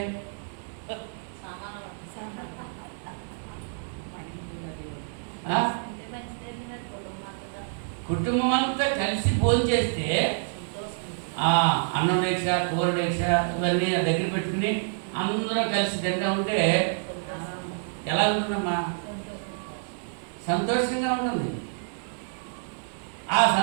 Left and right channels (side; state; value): left; silent; 60 dB below the other